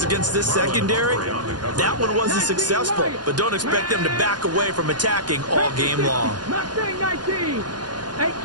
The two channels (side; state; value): left; late; 0.70 ms